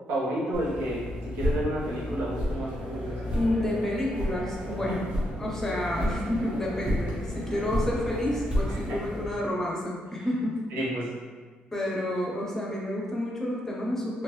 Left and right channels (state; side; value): normal; both; correlation 0.80